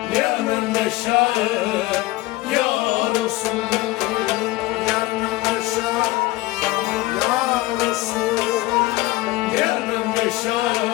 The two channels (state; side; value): quieter; right; 19.2 dB